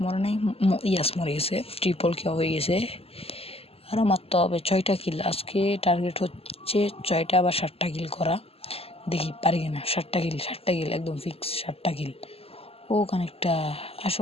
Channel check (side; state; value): right; late; 0.28 ms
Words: মরে নেই, ইয়াস মরে গেছে, ট্রিপল কেউ হয়ে গেছে, আরও মারতে হবে 6টা কিল, আজকে টার্গেট হচ্ছে 6টা বা 7টা কিল করা, দেখি পারি কিনা, 7টা কিল একদম ফিক্স, 7টা কিল। ও কানেকটা,